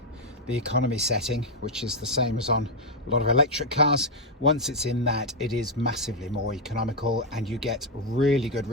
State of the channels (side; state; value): both; normal; correlation 0.00